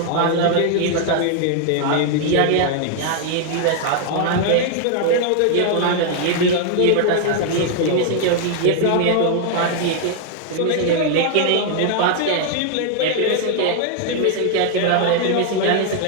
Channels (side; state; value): both; different; correlation 0.00